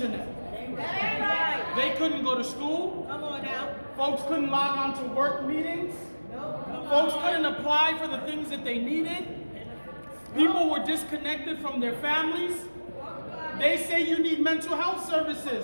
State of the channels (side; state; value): both; inverted; correlation -1.00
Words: They couldn't go to school. Come on now. Folks couldn't log on to work meetings. Folks couldn't apply for the things that they needed. People were disconnected from their families. They say you need mental health